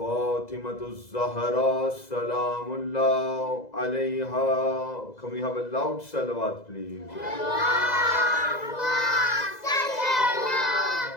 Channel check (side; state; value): right; late; 2.0 ms